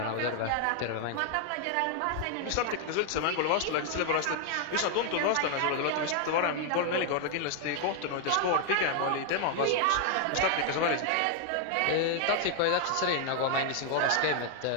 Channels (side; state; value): both; different; correlation 0.00